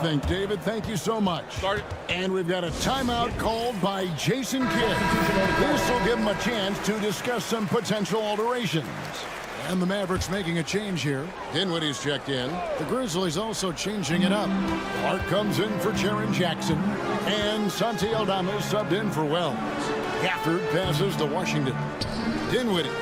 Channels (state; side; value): identical; both; correlation 1.00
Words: David, thank you so much. And we've got a timeout called by Jason Kidd. This will give him a chance to discuss some potential alterations. And the Mavericks making a change here. Dinwiddie's checked in. The Grizzlies also changing it up. Clark comes in for Jaren Jackson. And Santi Aldama subbed in for Wells. Gafford passes to Washington. Dinwiddie